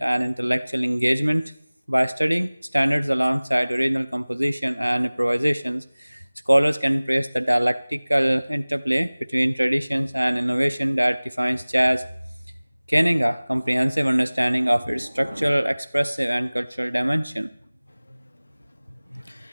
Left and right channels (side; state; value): both; inverted; correlation -0.99